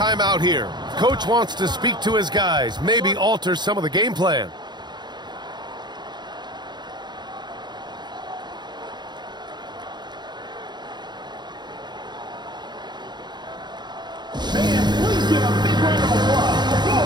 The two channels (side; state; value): left; late; 0.21 ms